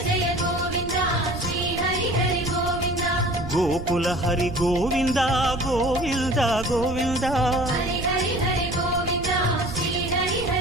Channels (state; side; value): noise; right; rumble, 9 dB below the sound